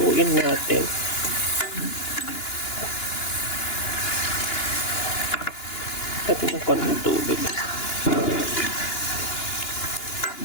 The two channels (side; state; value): right; late; 2.9 ms